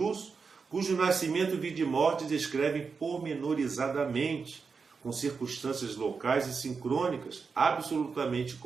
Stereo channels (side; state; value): left; quieter; 5.1 dB